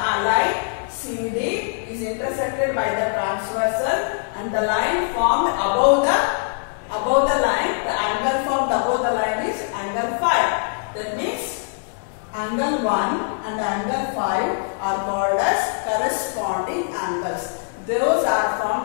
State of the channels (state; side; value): silent; right; 58 dB below the other